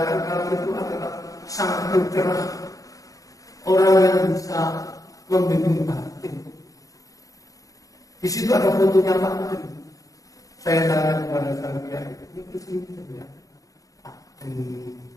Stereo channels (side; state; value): right; late; 0.17 ms